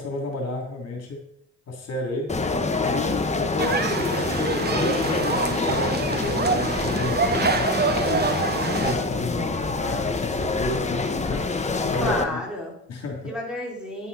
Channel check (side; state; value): both; normal; correlation 0.23